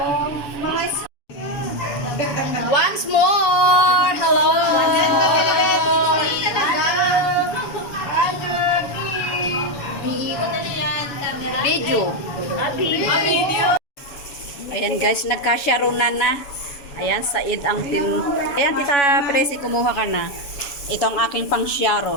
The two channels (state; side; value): late; right; 7.1 ms